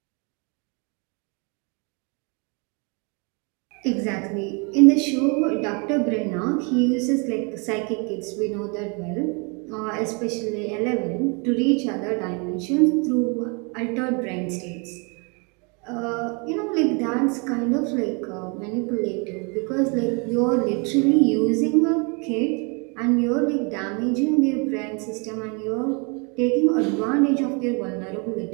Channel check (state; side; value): quieter; left; 33.1 dB